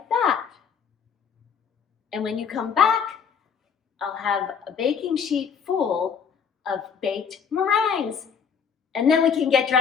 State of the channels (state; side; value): quieter; right; 6.8 dB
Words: that. And when you come back, I'll have a baking sheet full of baked meringues. And then we can get